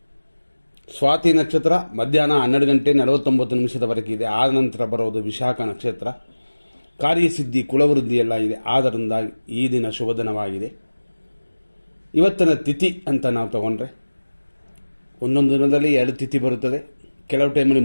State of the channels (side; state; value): both; inverted; correlation -1.00